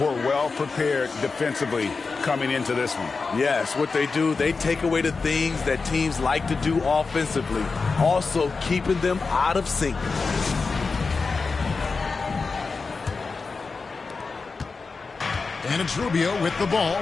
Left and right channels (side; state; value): right; quieter; 4.4 dB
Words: well prepared defensively coming into this one. Yes, what they do, they take away the things that teams like to do offensively, also keeping them out of sync. And it's Rubio with the ball